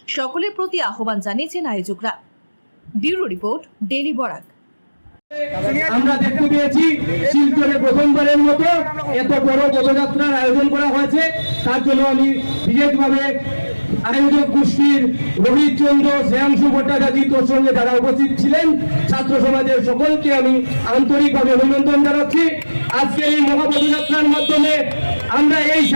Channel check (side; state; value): both; inverted; correlation -1.00